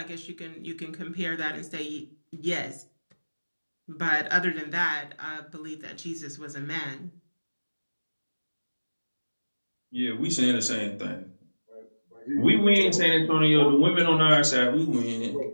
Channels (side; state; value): both; inverted; correlation -1.00